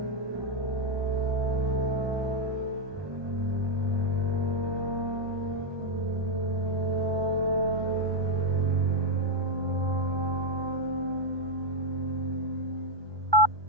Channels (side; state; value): left; late; 1.2 ms